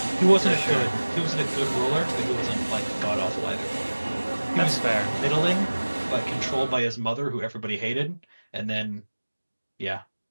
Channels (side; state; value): both; inverted; correlation -1.00